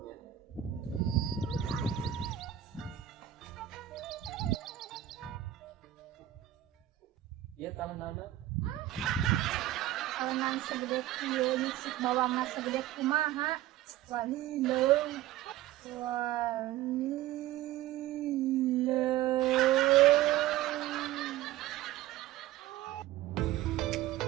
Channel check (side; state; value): left; quieter; 13.6 dB